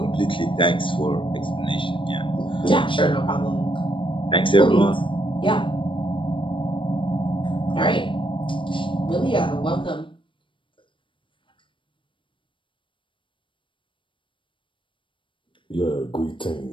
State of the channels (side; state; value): right; late; 0.24 ms